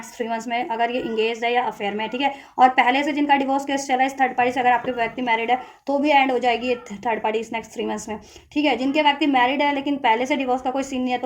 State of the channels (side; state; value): both; identical; correlation 1.00